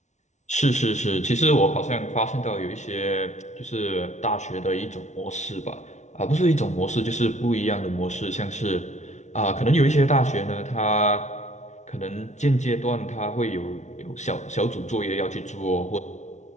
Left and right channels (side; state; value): right; late; 0.33 ms